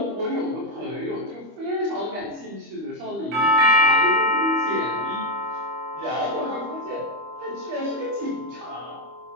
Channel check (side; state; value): left; late; 25 ms